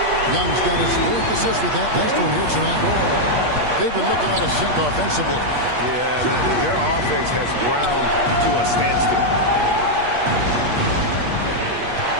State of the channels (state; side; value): late; left; 8.4 ms